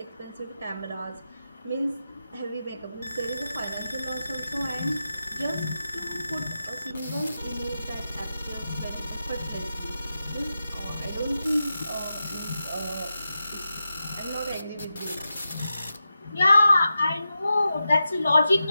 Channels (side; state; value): both; inverted; correlation -0.90